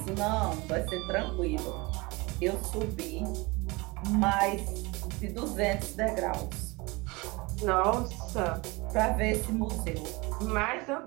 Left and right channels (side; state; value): left; quieter; 24.8 dB